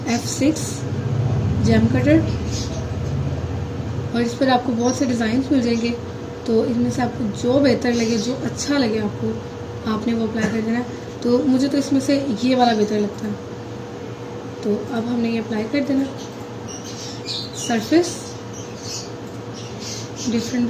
F6 जैम कटर, और इस पर आपको बहुत से डिज़ाइंस मिल जाएंगे, तो इनमें से आपको जो बेहतर लगे, जो अच्छा लगे आपको, आपने वो अप्लाई कर देना। तो मुझे तो इसमें से ये वाला बेहतर लगता है, तो अब हमने ये अप्लाई कर देना। सरफेस डिफरेंट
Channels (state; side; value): identical; both; correlation 1.00